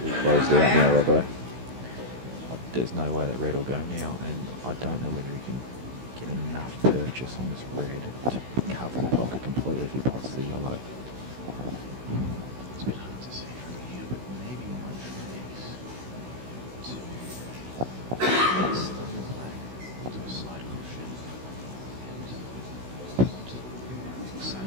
closed out now, Robbo. There's no way that red will go now, and I don't know whether he can get enough purchase on this red to cover the pocket completely if he pots across the yellow. It's a bit hard to see from here, but maybe you might try this to stun the black onto a side cushion and put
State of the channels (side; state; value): left; late; 16 ms